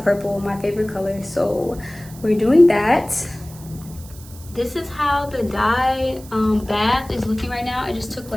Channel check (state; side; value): noise; right; hiss, 20 dB below the sound